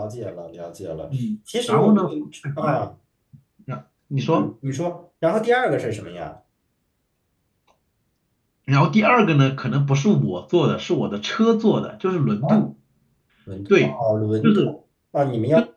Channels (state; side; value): identical; both; correlation 1.00